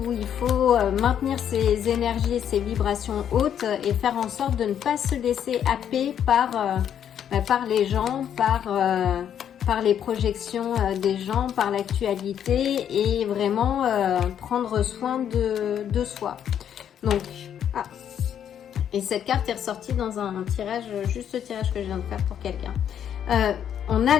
il faut maintenir ses énergies et ses vibrations hautes et faire en sorte de ne pas se laisser happer par les gens, par les projections des gens, par l'actualité, et vraiment prendre soin de soi. Donc, et cette carte est ressortie dans un tirage, juste ce tirage que je viens de faire pour quelqu'un. On a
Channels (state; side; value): quieter; right; 9.3 dB